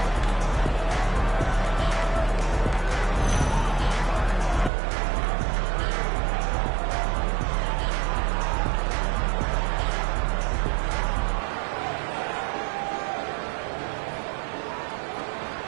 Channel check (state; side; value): drops out; left; at 4.7 s